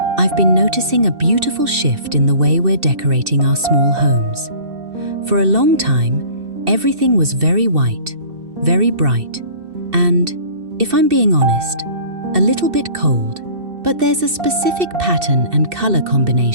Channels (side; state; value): left; late; 2.6 ms